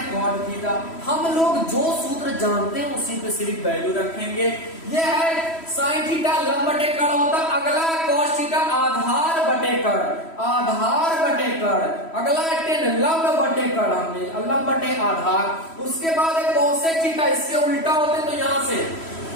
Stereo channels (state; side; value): late; right; 3.1 ms